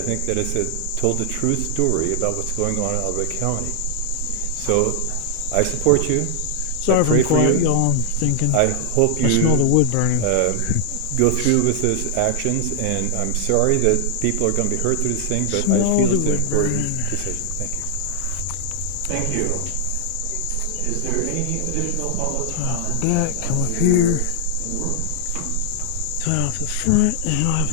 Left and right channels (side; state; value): both; different; correlation 0.00